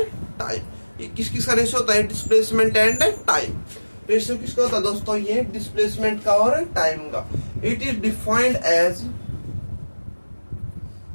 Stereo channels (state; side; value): inverted; both; correlation -1.00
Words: टाइम। ये किस किस का रेशियो होता है? Displacement and time. रेशियो किसका होता है दोस्तों? ये डिस्प्लेसमेंट का और टाइम का। It is defined as